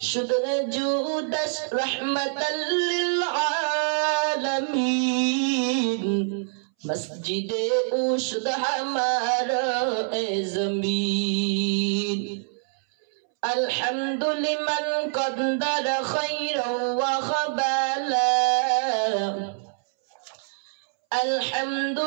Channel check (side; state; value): left; silent; 61 dB below the other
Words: शुद्र जुदश रहमतल लिल आलमीन, मस्जिदे उशद हमारा ए ज़मीन। अल्हम्दुलिमन क़द्दर खैरन व ख़बाला,